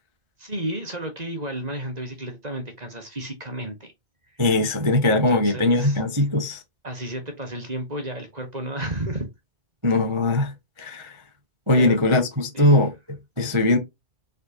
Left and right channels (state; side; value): late; left; 1.4 ms